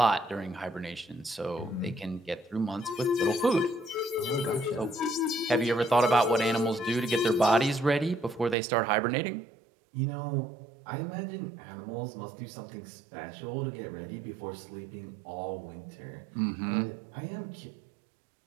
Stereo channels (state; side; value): drops out; left; at 8.6 s